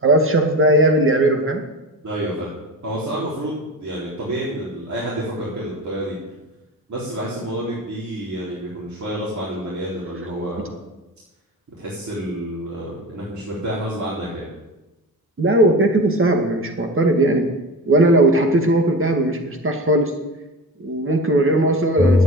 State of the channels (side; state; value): both; normal; correlation 0.29